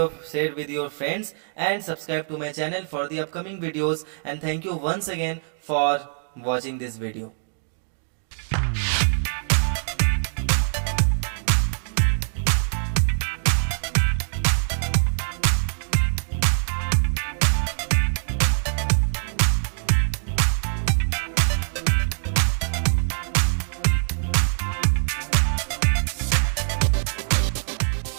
with your friends and subscribe to my channel for the upcoming videos. And thank you once again for watching this video.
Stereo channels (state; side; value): silent; left; digital silence